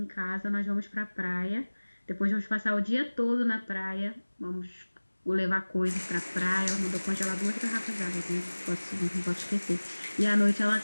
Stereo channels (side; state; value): both; inverted; correlation -1.00